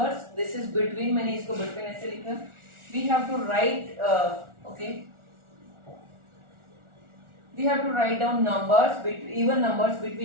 This is between. मैंने इसको between ऐसे लिखा. We have to write we have to write down even numbers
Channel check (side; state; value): left; late; 1.4 ms